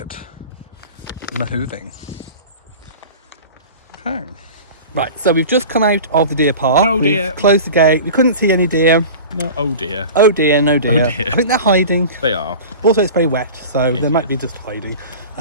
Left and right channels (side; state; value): both; inverted; correlation -0.36